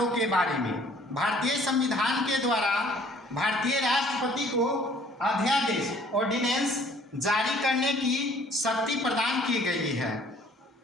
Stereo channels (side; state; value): both; normal; correlation 0.57